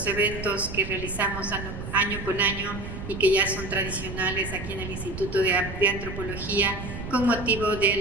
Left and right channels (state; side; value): noise; right; rumble, 8 dB below the sound